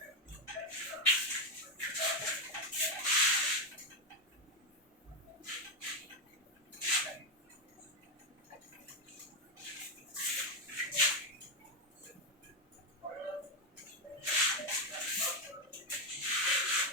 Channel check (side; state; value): both; normal; correlation 0.06